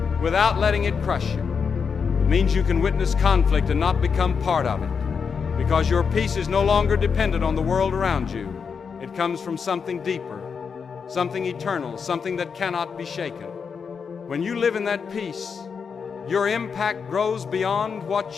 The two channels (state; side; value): quieter; right; 6.0 dB